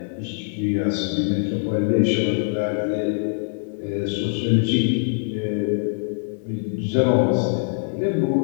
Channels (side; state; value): right; silent; 63 dB below the other